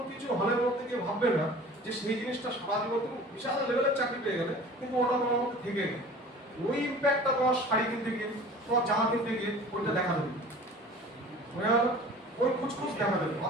কিছু হলের মধ্যে গিয়ে ভাববে না যে সেই জিনিসটা সারা জীবন তুমি বিশাল লেভেলের চাকরি পেয়ে গেলে, কিন্তু ওটা তোমার মধ্যে থেকে গেল। ওই ইম্প্যাক্টটা তোমার শাড়ি কিনতে গিয়ে, তোমার জামা কিনতে গিয়ে ওইটা দেখা দেবে, বুঝে গেল? ওই খুচখুচ দেখা দেবে।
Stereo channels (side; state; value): both; normal; correlation 0.43